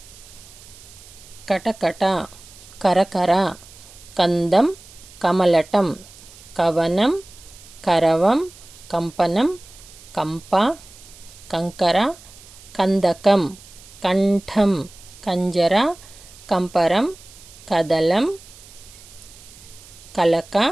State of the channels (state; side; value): noise; right; hiss, 21 dB below the sound